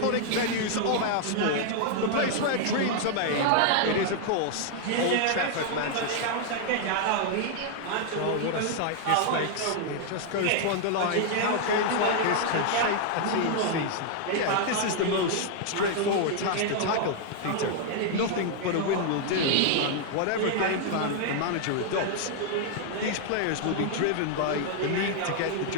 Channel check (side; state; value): both; different; correlation 0.00